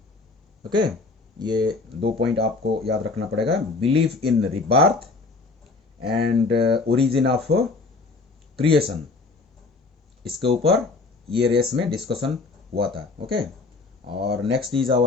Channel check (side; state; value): right; quieter; 3.8 dB